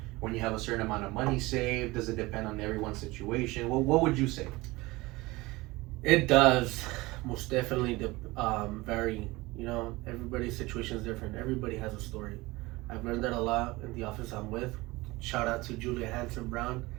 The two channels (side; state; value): left; quieter; 21.3 dB